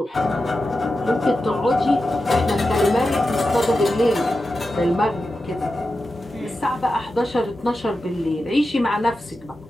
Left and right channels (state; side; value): normal; both; correlation 0.91